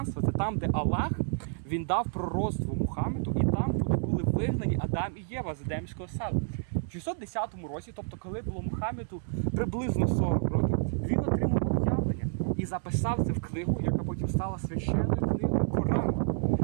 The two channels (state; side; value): silent; left; digital silence